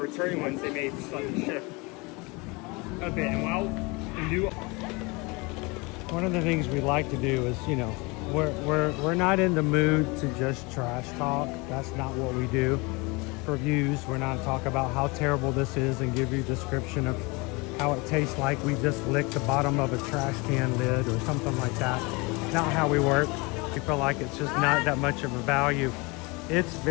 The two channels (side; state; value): right; quieter; 26.8 dB